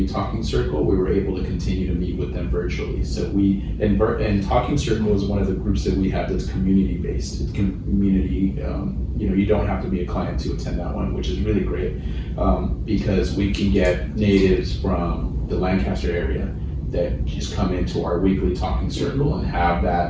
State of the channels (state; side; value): identical; both; correlation 1.00